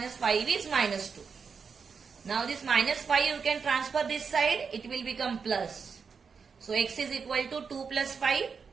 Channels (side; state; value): left; quieter; 5.7 dB